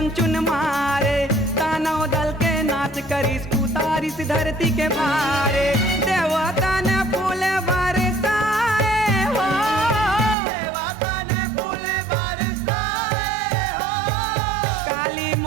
चुन मारे, दानव दल के नाश करिस उतारिस धरती के भारे। देवता ने फूल बरसाए हो, देवता ने फूल बरसाए हो। काली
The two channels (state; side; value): drops out; left; at 10.4 s